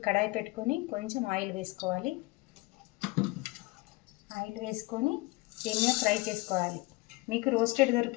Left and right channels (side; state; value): right; quieter; 23.1 dB